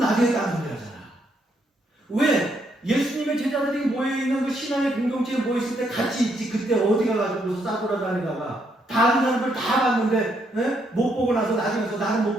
따라오잖아. 왜? 예수님의 제자들이 모여있는 그 신앙의 공동체에 모였을 때 같이 있지. 그때 어디 가가지고 싸돌아다니다가 다른 사람들 다 봤는데 못 보고 나서 나중에서 나는 못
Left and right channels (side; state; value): both; normal; correlation 0.75